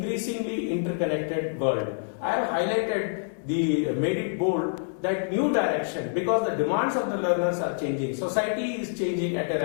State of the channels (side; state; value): right; silent; digital silence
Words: interconnected world. I have made it bold, that new direction, because the demands of the learners are changing. Society is changing at a